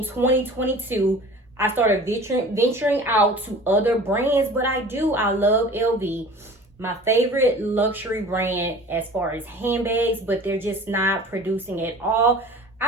2022. I started venturing out to other brands, but I love LV. My favorite luxury brand as far as handbags, but they're just not producing at all.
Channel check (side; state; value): both; normal; correlation 0.42